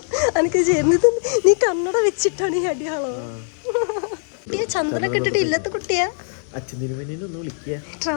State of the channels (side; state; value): right; silent; 65 dB below the other